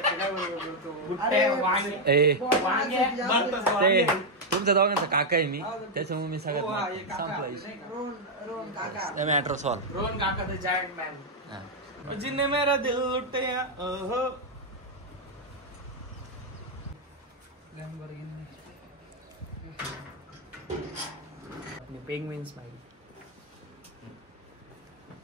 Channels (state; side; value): normal; both; correlation 0.00